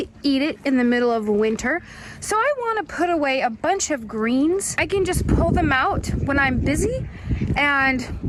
eat it in the middle of winter, so I want to put away a bunch of greens. I can just pull them out when I'm busy and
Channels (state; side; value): identical; both; correlation 1.00